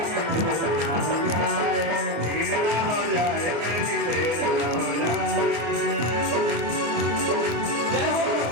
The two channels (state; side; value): late; left; 24 ms